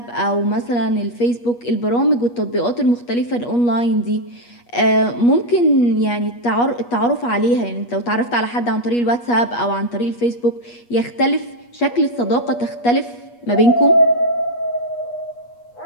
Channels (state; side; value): late; right; 8.3 ms